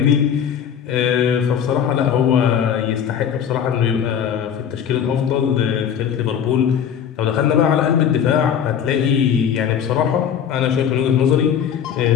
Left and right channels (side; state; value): right; quieter; 8.4 dB